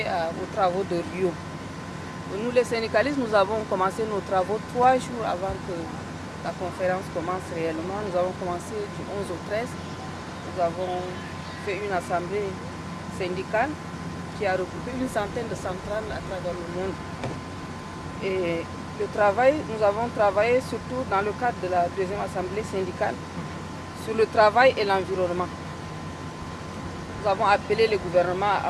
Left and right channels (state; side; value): identical; both; correlation 1.00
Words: aux travaux de Rio. Nous, les syndicalistes, nous avons commencé nos travaux 3 jours avant que la conférence commence réellement. Nous avons commencé du 11 au 13. Nous avons fait une assemblée syndicale qui a regroupé une centaine de centrales à travers le monde. Et nous avons travaillé surtout dans le cadre de la deuxième assemblée syndicale sur le travail et l'environnement. Nous avons appelé le gouvernement à